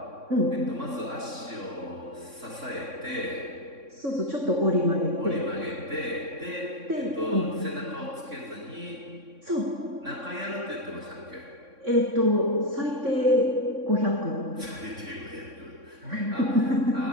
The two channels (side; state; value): left; late; 3.6 ms